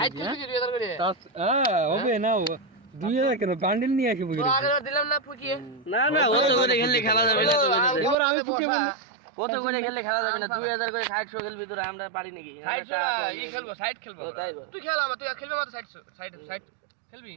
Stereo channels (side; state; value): left; drops out; at 8.2 s